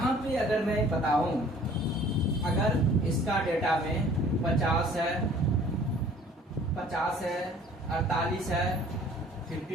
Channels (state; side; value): normal; both; correlation 0.53